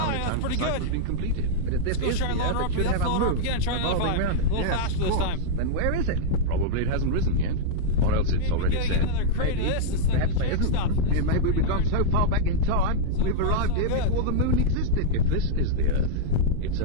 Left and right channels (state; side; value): different; both; correlation -0.02